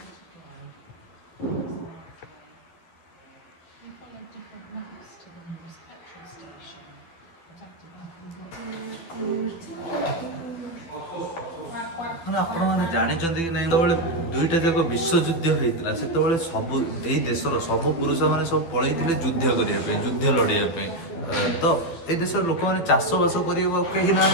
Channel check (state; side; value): late; right; 12 ms